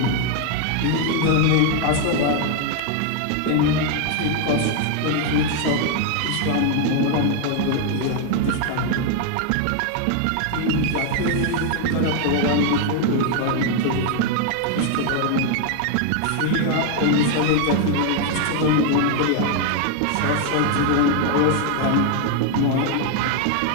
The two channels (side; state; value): both; different; correlation 0.00